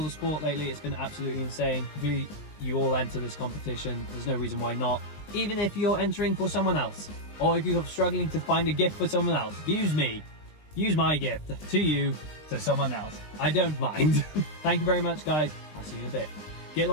support lately. It's been absolutely insane. Hopefully you all enter this competition. There's no reason why not. Even if you're entering for someone else, or if you're struggling to find a gift for someone else, use me. Use my gift to you, to someone else. I don't mind. Thank you very much, guys. I'll see you in a bit. Get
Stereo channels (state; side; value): late; right; 20 ms